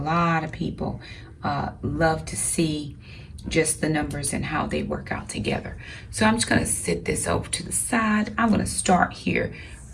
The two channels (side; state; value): both; identical; correlation 1.00